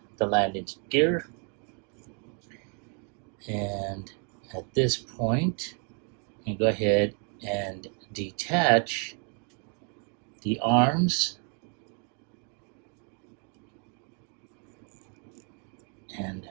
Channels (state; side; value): quieter; left; 39.8 dB